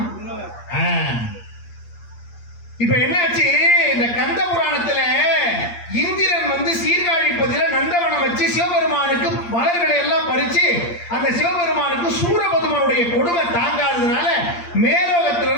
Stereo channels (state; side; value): late; right; 8.6 ms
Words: இப்ப என்னாச்சு, இந்த கந்த புராணத்துல இந்திரன் வந்து சீர்காழிப்பதில நந்தவனம் வச்சு சிவபெருமானுக்கு மலர்களை எல்லாம் பறிச்சு அந்த சிவபெருமானுக்கு சூரபதுமனுடைய கொடுமை தாங்காததுனால